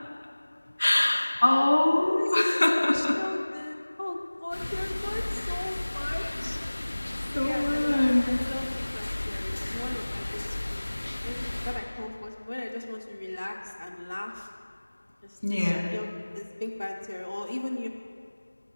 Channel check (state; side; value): inverted; both; correlation -1.00